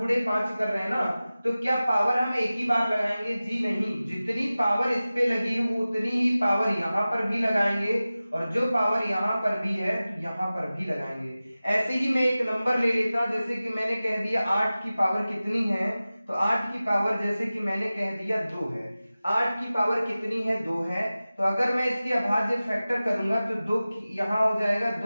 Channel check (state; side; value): inverted; both; correlation -0.96